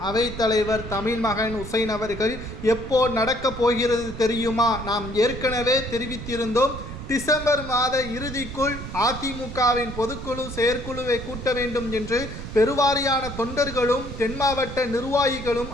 அவைத்தலைவர் தமிழ்மகன் உசைன் அவர்கள் எப்போ நடக்கப் போகிறது தெரியுமா? நாம் ஏற்கனவே தெரிவித்திருந்தோம். டிசம்பர் மாத இறுதிக்குள் அதிமுகவின் பொதுக்குழு செயற்குழுவை கூட்ட வேண்டும் என்று பெருவாரியான தொண்டர்களும் தென் மாவட்ட நிர்வாகிகளும்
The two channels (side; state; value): right; noise; rumble, 10 dB below the sound